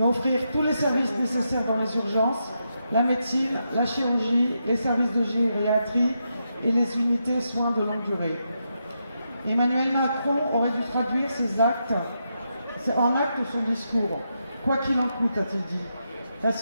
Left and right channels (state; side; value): inverted; both; correlation -0.84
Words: offrir tous les services nécessaires dans les urgences, la médecine, la chirurgie, les services de gériatrie et les unités soins de longue durée. Emmanuel Macron aurait dû traduire ses actes en acte son discours. Quoi qu'il en coûte, a-t-il dit. La